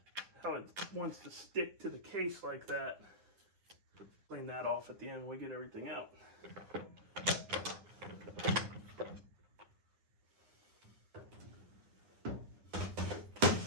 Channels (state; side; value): late; left; 9.7 ms